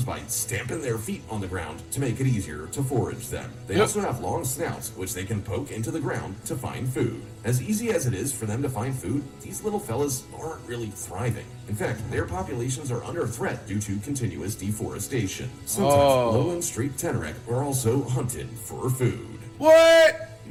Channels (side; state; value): both; identical; correlation 1.00